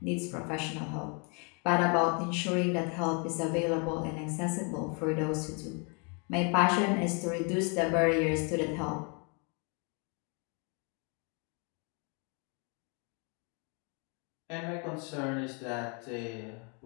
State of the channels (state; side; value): quieter; right; 35.4 dB